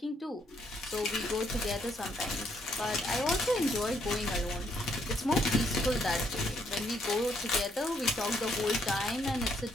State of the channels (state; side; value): normal; both; correlation 0.72